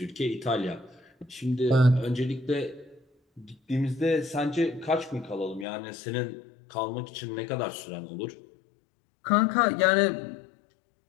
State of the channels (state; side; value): drops out; right; at 5.7 s